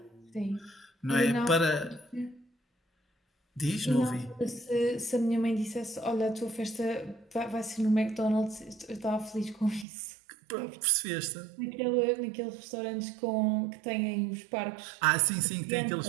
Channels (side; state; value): left; drops out; at 9.9 s